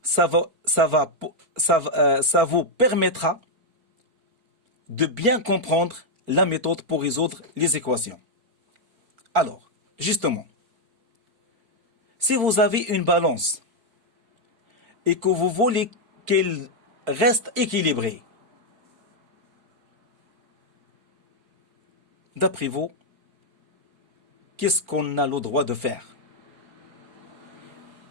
ça vous permettra de bien comprendre la méthode pour résoudre les équations. Alors, justement, Si vous avez une balance et que vous voulez qu'elle reste équilibrée, d'après vous, qu'est-ce qu'on a le droit de faire?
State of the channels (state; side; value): late; left; 4.4 ms